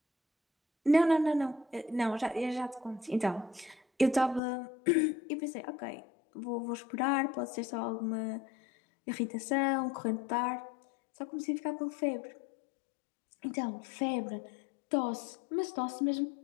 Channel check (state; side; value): drops out; right; at 4.4 s